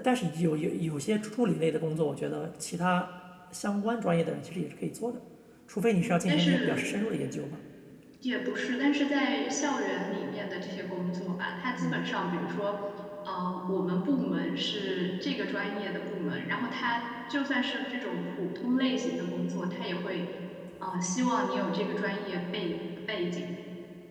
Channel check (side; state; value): both; identical; correlation 1.00